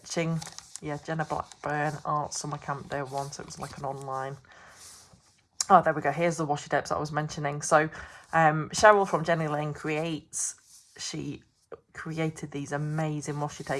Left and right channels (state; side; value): identical; both; correlation 1.00